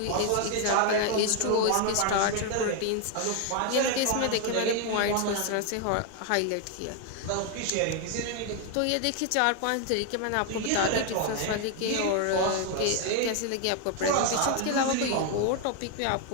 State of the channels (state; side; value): different; both; correlation 0.01